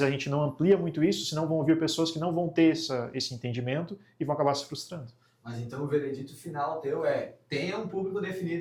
a gente não amplia muito isso, senão vão vir pessoas que não vão ter esse entendimento e vão acabar se frustrando. Mas então o veredito final teu é: tenha um público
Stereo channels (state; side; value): identical; both; correlation 1.00